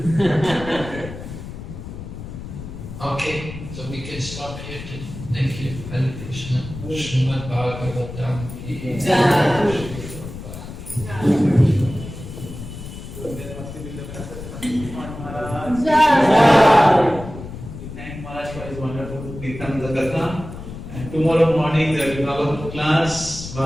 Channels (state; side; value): noise; left; rumble, 11 dB below the sound